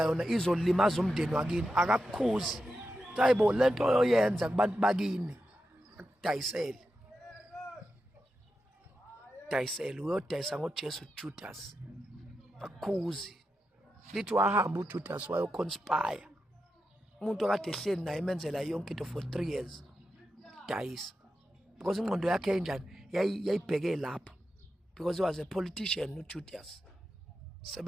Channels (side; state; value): both; normal; correlation 0.89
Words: yona izolimaza umndeni wakini. Akakukhuzi. Hayibo lento oyenza kubantu bakini akudayisele. Uyodayisa ngoJesu Judas. Akukhuzi. Lithi wahamba uJudas wayoconspire. Umuntu okade ehleli naye emenzela yonke into for 3 years. Dayisa. Because ingqondo yakhe enjani yayibheke lapho. Because he was a politician uJudas.